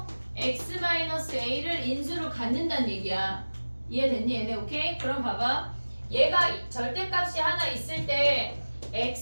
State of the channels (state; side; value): inverted; both; correlation -1.00